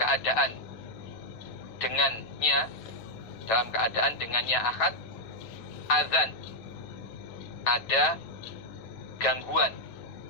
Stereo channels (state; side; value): late; right; 9.0 ms